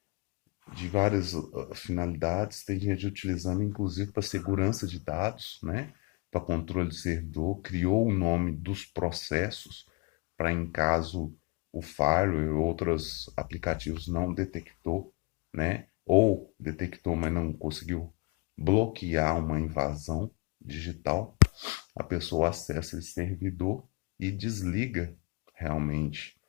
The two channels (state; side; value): quieter; right; 27.8 dB